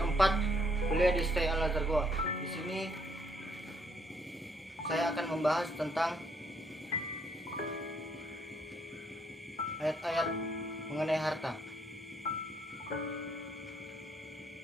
4, kuliah di STI Al-Azhar Goa. Di sini saya akan membahas tentang ayat-ayat mengenai harta.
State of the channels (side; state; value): both; normal; correlation 0.70